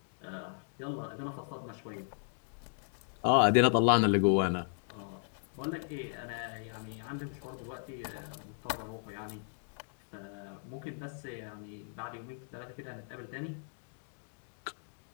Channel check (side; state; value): right; silent; digital silence